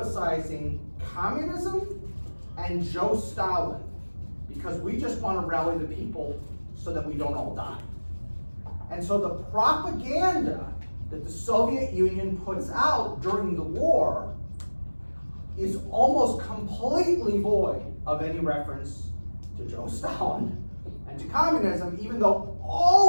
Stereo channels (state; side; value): inverted; both; correlation -1.00